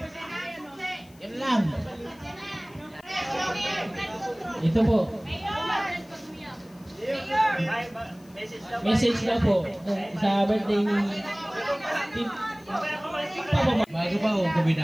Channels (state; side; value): noise; left; hiss, 28 dB below the sound